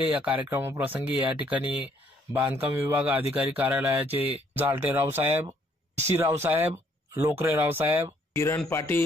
या कार्यक्रमाप्रसंगी या ठिकाणी बांधकाम विभाग अधिकारी कार्यालयाचे जालटे रावसाहेब, सी रावसाहेब, लोकरे रावसाहेब, किरण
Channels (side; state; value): both; normal; correlation 0.66